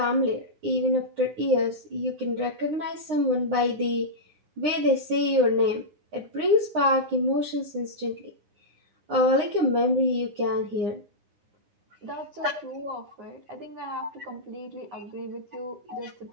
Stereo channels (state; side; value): late; left; 9.7 ms